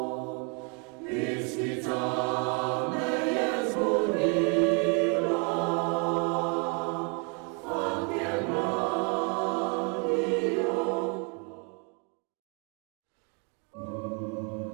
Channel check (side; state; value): left; quieter; 35.9 dB